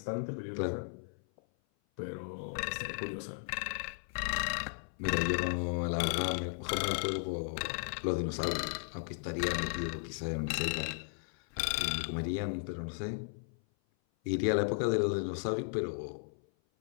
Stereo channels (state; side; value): silent; right; 54 dB below the other